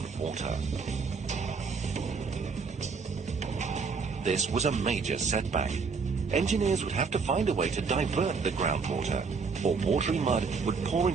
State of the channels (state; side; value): quieter; left; 5.1 dB